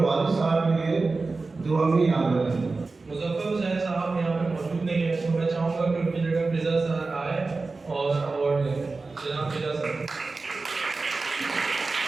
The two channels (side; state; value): left; quieter; 3.8 dB